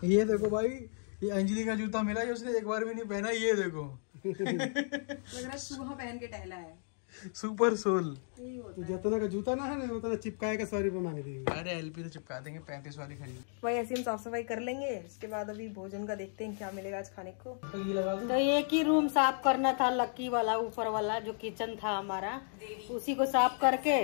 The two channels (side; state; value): right; silent; 55 dB below the other